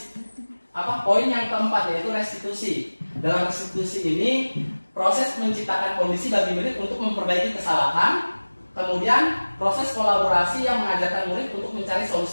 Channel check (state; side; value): inverted; both; correlation -1.00